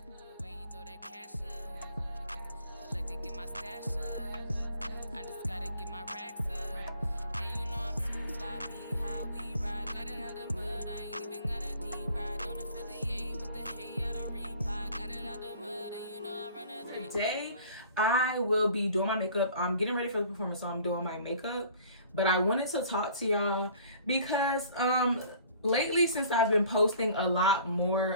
Today I will be doing my makeup. I'm getting ready for the performance, so I'm doing my makeup. But I wanted to talk to y'all because lately, since I've been posting a lot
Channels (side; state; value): both; inverted; correlation -0.51